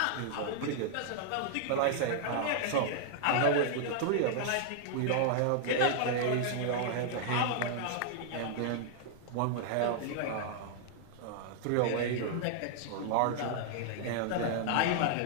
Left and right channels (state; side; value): different; both; correlation -0.01